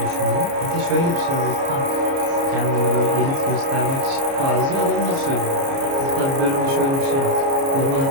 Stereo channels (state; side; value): late; left; 29 ms